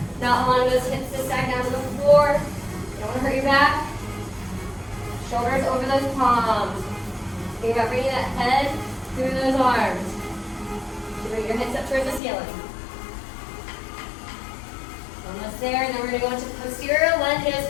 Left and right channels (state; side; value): drops out; right; at 12.2 s